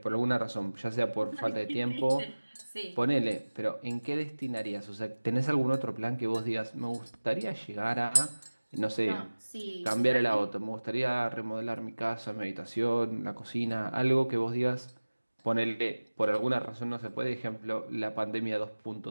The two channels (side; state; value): both; inverted; correlation -1.00